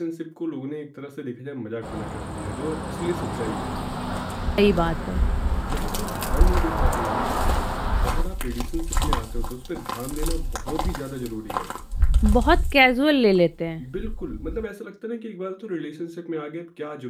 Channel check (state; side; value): identical; both; correlation 1.00